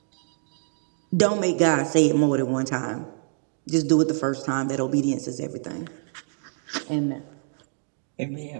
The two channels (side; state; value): left; silent; digital silence